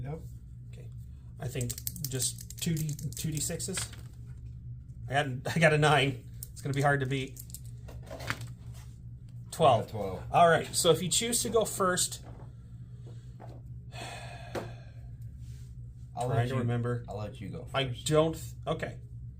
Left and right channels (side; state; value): both; identical; correlation 1.00